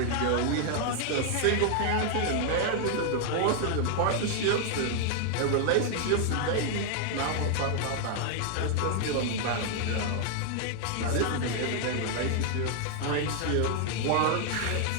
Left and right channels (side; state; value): both; different; correlation 0.00